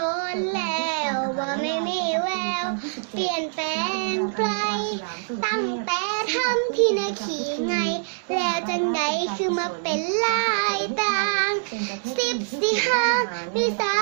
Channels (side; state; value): left; silent; digital silence